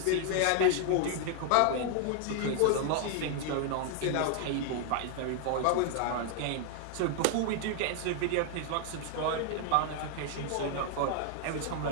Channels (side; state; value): both; different; correlation 0.00